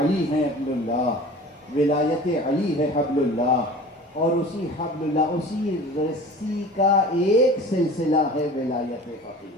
ہے حبل اللہ، ولایت علی ہے حبل اللہ، اور اسی حبل اللہ، اسی رسی کا ایک سلسلہ ہے ولایت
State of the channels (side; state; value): both; normal; correlation 0.41